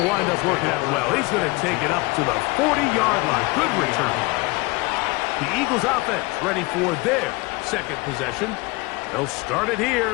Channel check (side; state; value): right; quieter; 24.5 dB